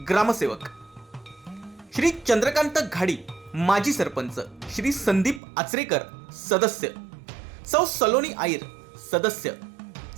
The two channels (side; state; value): left; drops out; at 5.4 s